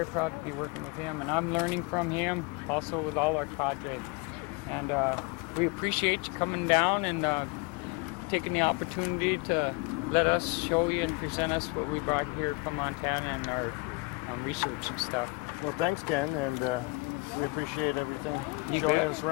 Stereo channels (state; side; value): quieter; right; 26.8 dB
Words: proud to be working with him. And I'm learning from him, also with all our cadre. And we appreciate you coming down and taking the opportunity to let us show you and present us what we brought here from Montana and our research and stuff. Well, thanks, Ken, and we appreciate everything. You Showing bet. us